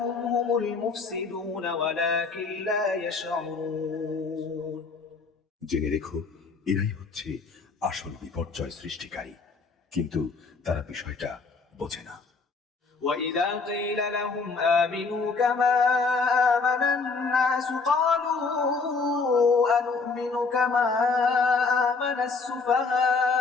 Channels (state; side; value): quieter; right; 4.4 dB